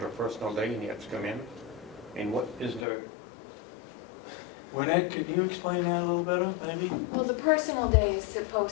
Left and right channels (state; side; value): drops out; right; at 2.9 s